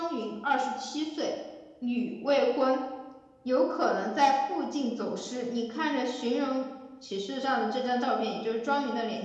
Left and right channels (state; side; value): identical; both; correlation 1.00